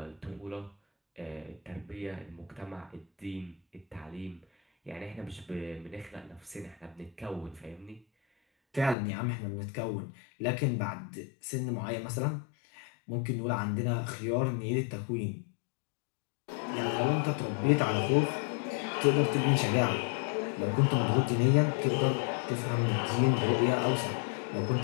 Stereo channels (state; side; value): drops out; right; at 9.0 s